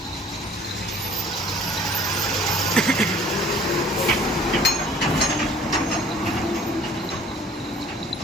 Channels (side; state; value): both; normal; correlation 0.52